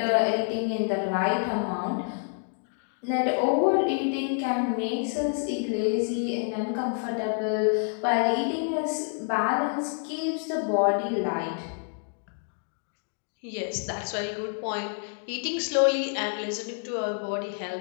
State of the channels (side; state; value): right; silent; 56 dB below the other